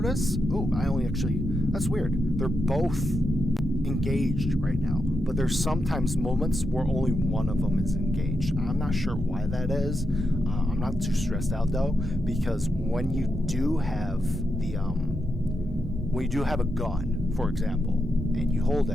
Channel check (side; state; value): both; normal; correlation 0.85